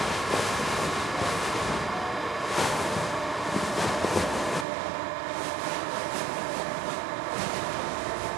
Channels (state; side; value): drops out; left; at 4.7 s